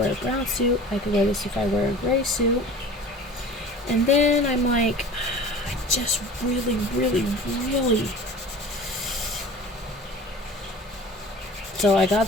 a brown suit. I could wear this if I wear a gray suit. And then I'm like, I just really. So I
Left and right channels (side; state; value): both; normal; correlation 0.41